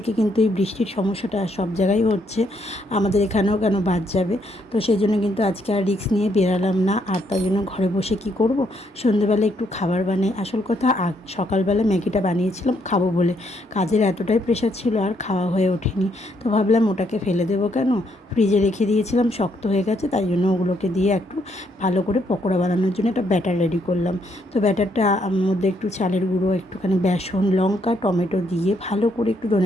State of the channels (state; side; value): normal; both; correlation 0.73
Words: কিন্তু এই বৃষ্টির সমস্যাটা সব জায়গায় হচ্ছে, আমাদের এখানেও কেন বাদ যাবে। তো সেই জন্য কিন্তু আজকে আর রিস্ক নিয়ে বেরালাম না। আর তার জন্য ঘরে বসে কি করব, সন্ধ্যেবেলা একটু খাবার বানাই। আসল কথা সকালবেলা ম্যাগিটা বানিয়েছিলাম খাবো বলে, কাজের এতটাই প্রেশার ছিল আর খাওয়া হয়ে ওঠেনি। তো ভাবলাম ওটাকে ফেলে দেবো কেন, ফ্রিজে রেখে দিয়েছিলাম, শক্ত হয়ে গেছে। তাই জন্য ওগুলোকে দিয়ে একটু ভালো করে পকোড়া বানানোর জন্য একটা ব্যাটার রেডি করলাম। তো ব্যাটারটা মধ্যে একটু চালের গুঁড়ো, একটুখানি বেসন, লঙ্কা, টমেটো দিয়ে ভালো করে একটু